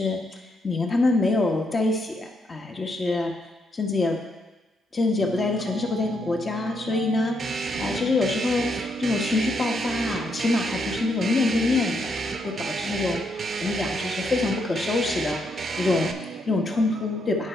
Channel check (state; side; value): normal; both; correlation 0.77